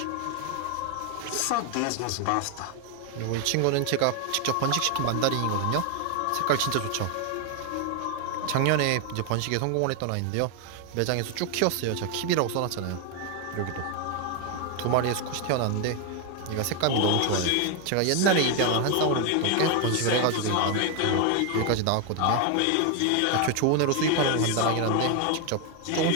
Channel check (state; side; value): different; both; correlation 0.01